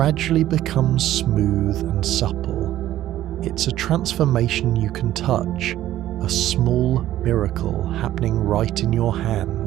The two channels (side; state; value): left; quieter; 13.4 dB